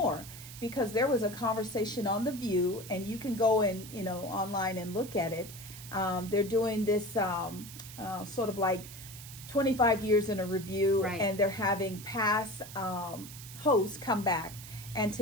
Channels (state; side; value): noise; right; hiss, 14 dB below the sound